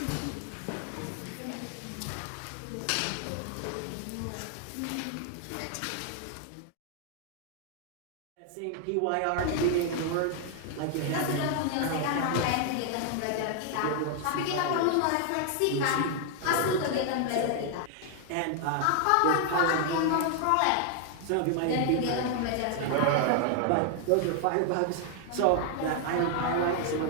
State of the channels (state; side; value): different; both; correlation 0.00